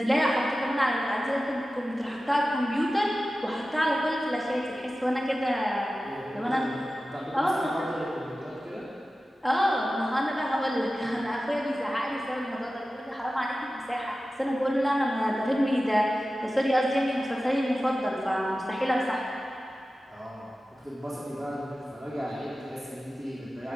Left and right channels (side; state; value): both; normal; correlation 0.94